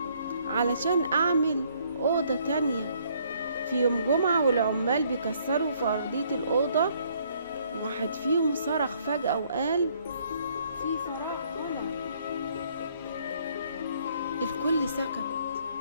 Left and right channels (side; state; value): both; inverted; correlation -0.65